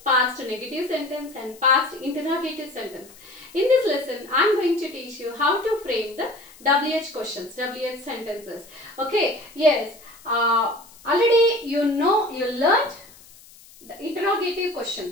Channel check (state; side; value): noise; left; hiss, 23 dB below the sound